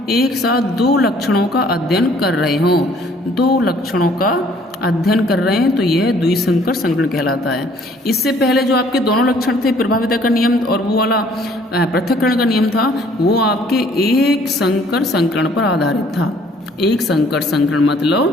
एक साथ 2 लक्षणों का अध्ययन कर रहे हों, 2 लक्षणों का अध्ययन कर रहे हैं तो यह द्विसंकर संकरण कहलाता है। इससे पहले जो आपके दोनों लक्षण थे प्रभाविता का नियम और वो वाला पृथक्करण का नियम था, वो आपके एक संकर संकरण पर आधारित था। एक संकर संकरण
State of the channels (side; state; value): both; normal; correlation 0.59